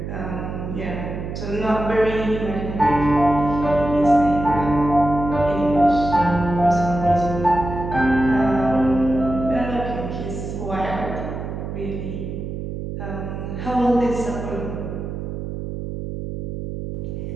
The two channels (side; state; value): right; noise; hum, 6 dB below the sound